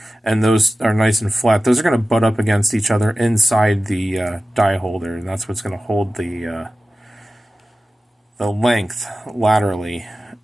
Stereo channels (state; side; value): normal; both; correlation 0.95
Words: and those are nice and flat. Those are going to butt up against each other inside the die holder, and that's what's going to hold the length laterally